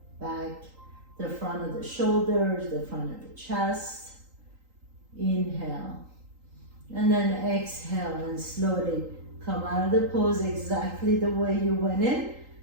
back, the front of the shoulders, the front of the chest. Inhale. And then exhale and slowly come out of the pose exactly the way you went in.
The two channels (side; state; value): left; late; 3.8 ms